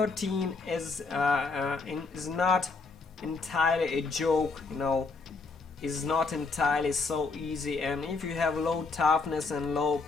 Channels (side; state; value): right; quieter; 4.2 dB